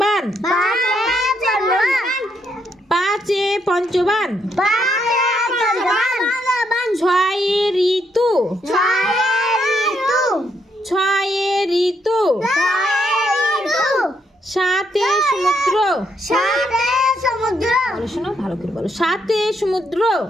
পাঁচে পঞ্চবান, ছয়ে ঋতু, ছয়ে ঋতু, সাতে সমুদ্র, বলো শোনো, ভালো করে বলো, সাতে সমুদ্র,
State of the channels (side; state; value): both; normal; correlation 0.75